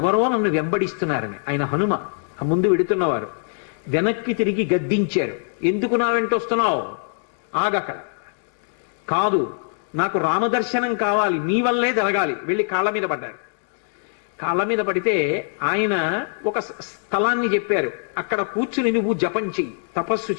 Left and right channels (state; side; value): silent; right; digital silence